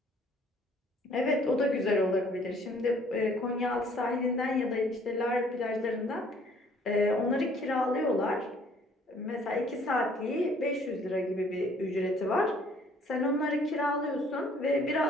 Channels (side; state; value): both; normal; correlation 0.59